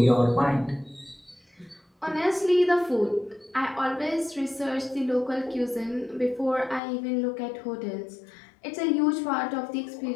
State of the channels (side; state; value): right; drops out; at 6.8 s